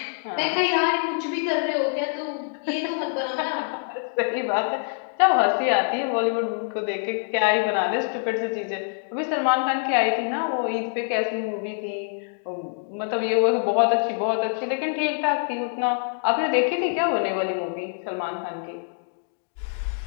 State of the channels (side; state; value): right; silent; digital silence